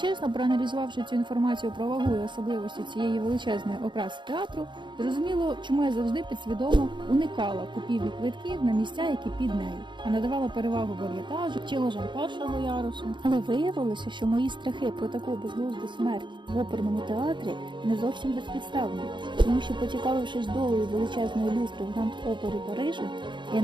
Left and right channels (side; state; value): left; late; 0.23 ms